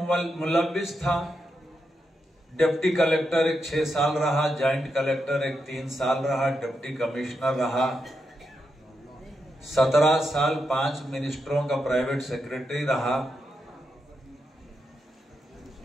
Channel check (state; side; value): normal; both; correlation 0.85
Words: मुलव्विस था। डिप्टी कलेक्टर एक 6 साल रहा, जॉइंट कलेक्टर एक 3 साल रहा, डिप्टी कमिश्नर रहा, 17 साल 5 मिनिस्टरों का प्राइवेट सेक्रेटरी रहा,